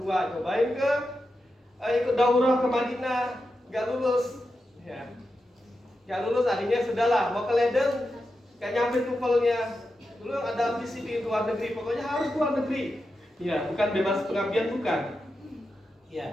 cobain ke ikut daurah ke Madinah, gak lulus, ya, gak lulus, akhirnya sudahlah mau ke Leiden, gak nyampe TOEFL-nya, dulu ada ambisi di luar negeri, pokoknya harus luar negeri, ya, bukan bebas pengabdian bukan,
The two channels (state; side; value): normal; both; correlation 0.89